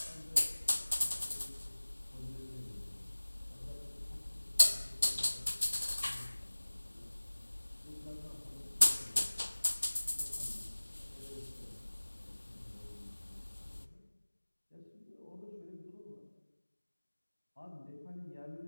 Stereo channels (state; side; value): inverted; both; correlation -1.00